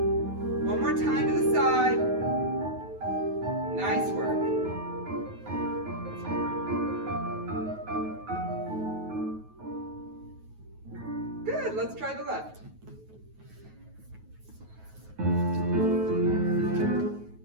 One more time to the side. Nice work. Good. Let's try the left.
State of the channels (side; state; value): left; late; 9.3 ms